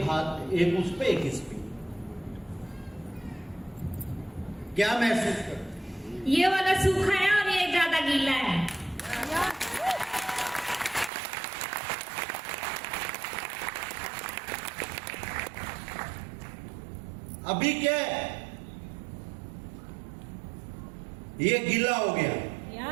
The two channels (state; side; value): drops out; left; at 11.1 s